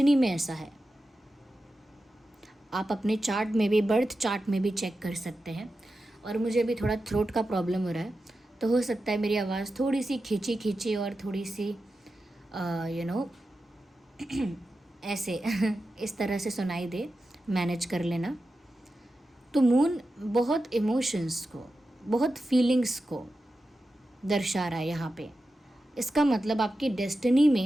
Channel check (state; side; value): normal; both; correlation 0.91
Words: में ऐसा है। आप अपने चार्ट में भी, बर्थ चार्ट में भी चेक कर सकते हैं। और मुझे भी थोड़ा थ्रोट का प्रॉब्लम हो रहा है, तो हो सकता है मेरी आवाज़ थोड़ी सी खींची खींची और थोड़ी सी ऐसे इस तरह से सुनाई दे, मैनेज कर लेना। तो मून बहुत इमोशंस को, बहुत फीलिंग्स को दर्शा रहा है यहाँ पे। इसका मतलब आपकी डेस्टिनी